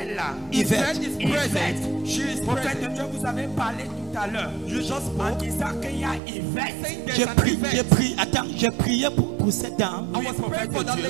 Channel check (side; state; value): left; drops out; at 6.2 s